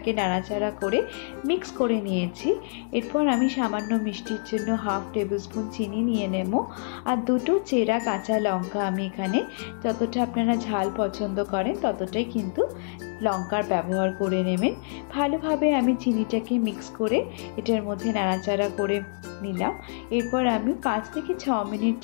নাড়াচাড়া করে মিক্স করে নিয়েছি। এরপর আমি সামান্য মিষ্টির জন্য 1/2 টেবিল স্পুন চিনি নিয়ে নেব। আর দুটো চেরা কাঁচা লঙ্কা আমি এখানে যতটা আপনারা ঝাল পছন্দ করেন ততটাই কিন্তু লঙ্কার ব্যবহার করে নেবেন। ভালোভাবে আমি চিনিটাকে মিক্স করে এটার মধ্যে নাড়াচাড়া করে নিলাম। এরপর আমি 5 থেকে 6 মিনিট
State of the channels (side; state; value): right; silent; digital silence